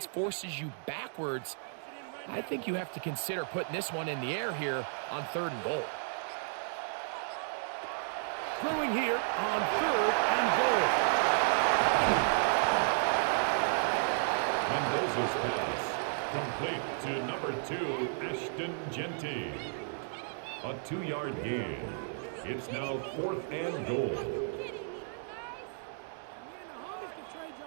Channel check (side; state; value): left; silent; digital silence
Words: forces you backwards, I think you have to consider putting this one in the air here on third and goal. Throwing here on third and goal. Mendoza's pass. Complete to number 2, Ashton Genty. A 2-yard gain. It's now 4th and goal.